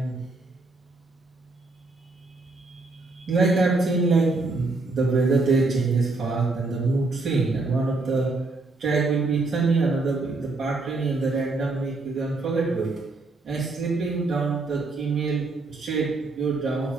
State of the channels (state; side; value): quieter; left; 3.4 dB